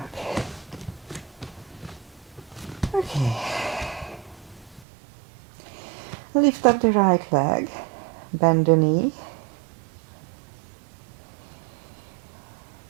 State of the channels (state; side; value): drops out; left; at 4.9 s